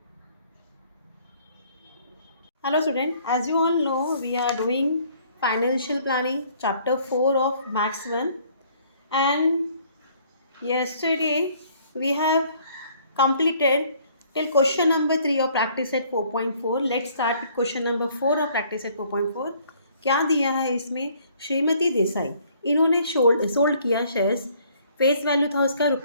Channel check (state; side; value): inverted; both; correlation -0.60